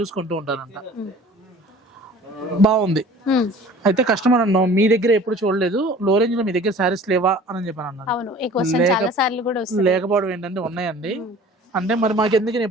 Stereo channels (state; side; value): normal; both; correlation 0.46